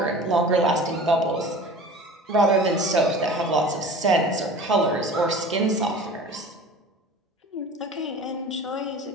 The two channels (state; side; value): normal; both; correlation 0.40